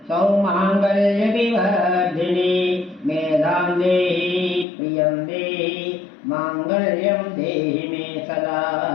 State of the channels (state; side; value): drops out; right; at 4.7 s